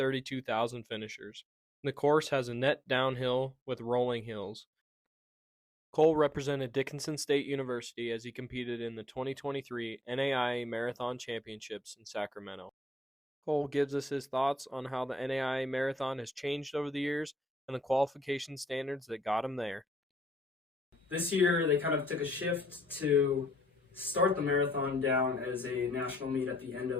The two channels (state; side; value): normal; both; correlation 0.73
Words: finishers. The course has a net downhill with rolling hills. Cole represented Dickinson State University as he competed in the 2023 NAIA Marathon Championships in Sacramento. Cole gives us his thoughts on how the NAIA Marathon has changed over the years and the qualification standards that got him there. This year, they kind of took a shift to start the marathon down as a national meet at the end